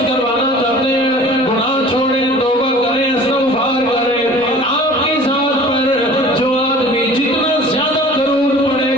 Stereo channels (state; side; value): noise; left; rumble, 29 dB below the sound